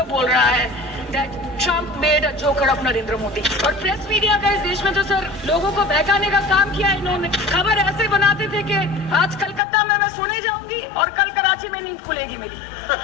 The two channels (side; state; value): right; drops out; at 9.6 s